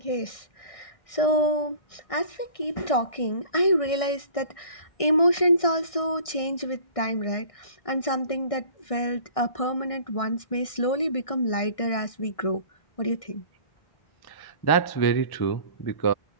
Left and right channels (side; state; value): right; late; 1.6 ms